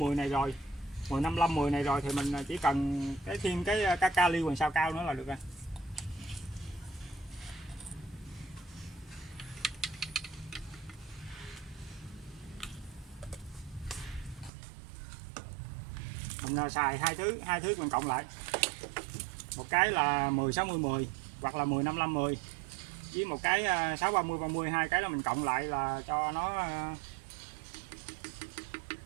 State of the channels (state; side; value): drops out; left; at 14.5 s